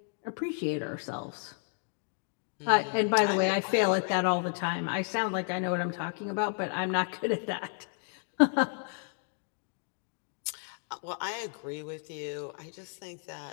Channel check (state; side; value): silent; right; 56 dB below the other